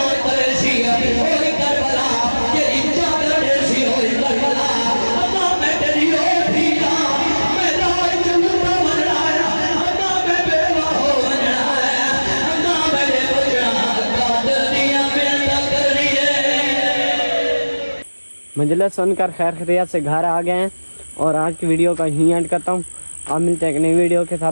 کرے سی ہوئی کربلا جڑی چادر دے سی ہوئی کربلا ماں میں تیری ہو ٹھیکا میں رائے چلتا من رہا ماں میں بیوہ ہو من رہا ماں میرے بچڑا قادر دیا ملتا کر رہی ہے مجلس سن کر خیر خیریت سے گھر آ گئے ہیں اور آج کی ویڈیو کا یہیں اینڈ کرتا ہوں آپ ملتے ہیں ایک نئی ویڈیو کے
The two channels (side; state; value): both; inverted; correlation -1.00